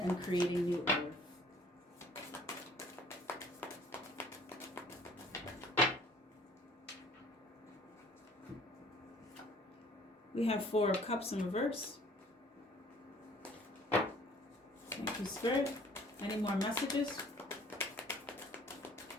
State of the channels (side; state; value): both; normal; correlation 0.55